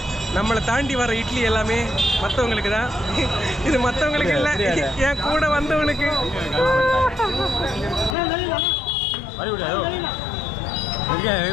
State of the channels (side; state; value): right; drops out; at 8.2 s